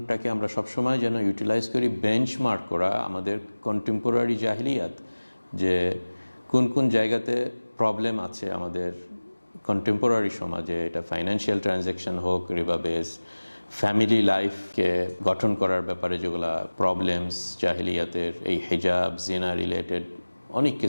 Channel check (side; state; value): both; inverted; correlation -1.00